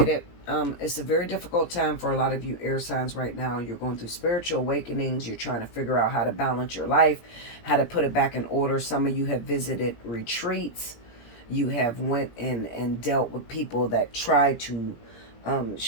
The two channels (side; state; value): right; late; 17 ms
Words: it's a very difficult time for a lot of you air signs right now. You're going through spiritual awakenings. You're trying to figure out how to balance your life, how to put it back in order. Some of you have visited retreats. You have went in and dealt with people that try to